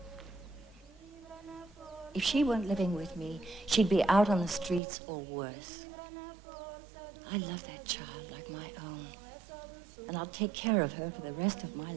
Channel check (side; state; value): left; drops out; at 4.8 s